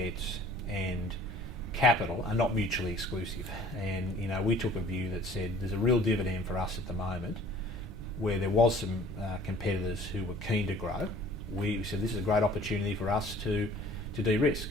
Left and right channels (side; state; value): both; normal; correlation 0.51